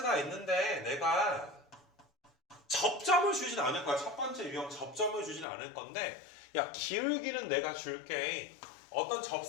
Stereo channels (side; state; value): right; drops out; at 5.5 s